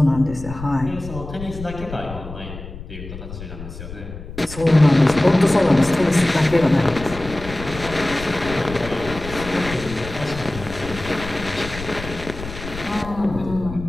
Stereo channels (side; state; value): left; noise; rumble, 12 dB below the sound